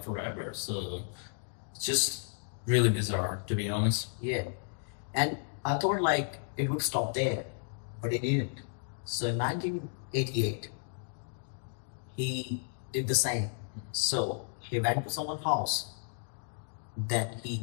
forever. So it's just really bizarre, to be honest. Yeah. And I thought like it would stop there, but it didn't. So in 1988, he did the same. So he went to someone's house, then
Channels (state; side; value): silent; right; digital silence